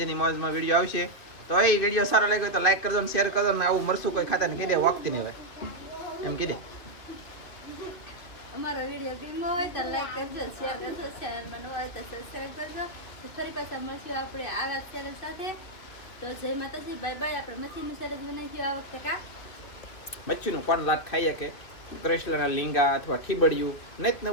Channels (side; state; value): right; late; 2.5 ms